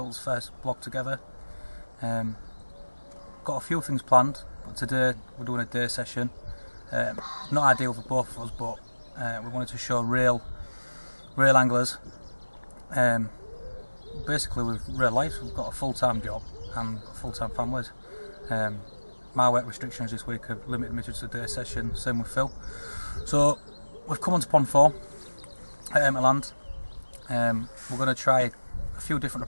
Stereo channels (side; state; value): both; inverted; correlation -1.00